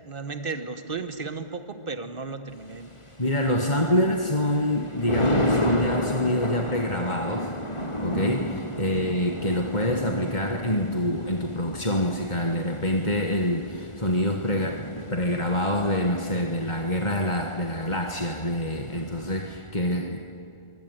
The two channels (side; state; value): right; late; 1.4 ms